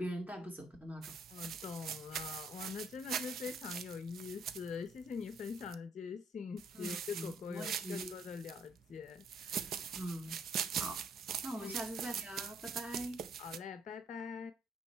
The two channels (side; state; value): both; normal; correlation 0.66